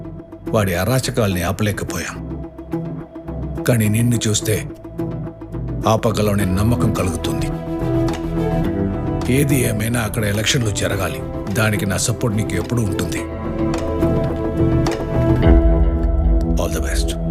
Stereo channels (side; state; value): both; identical; correlation 1.00